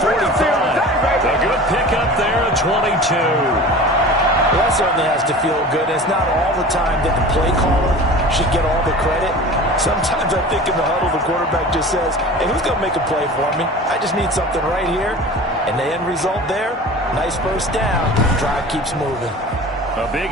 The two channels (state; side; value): normal; both; correlation 0.38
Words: A good pickup there at 22. Well, that certainly has to feel good. It's not all the time that the play caller should get all the credit. Sometimes I think in the huddle, the quarterback just says, hey, who's going to make a play for me? I just need something right here. And the end result there, nice first down. Drive keeps moving. A big